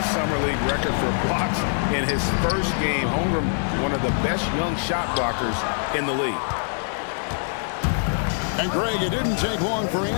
Summer League record for blocks in his first game. Holmgren, one of the best young shot blockers in the league. And Greg, it didn't take long for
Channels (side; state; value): right; silent; digital silence